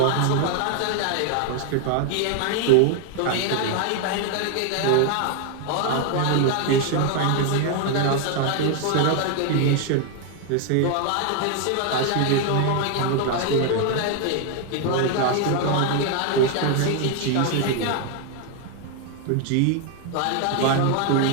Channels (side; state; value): both; different; correlation 0.00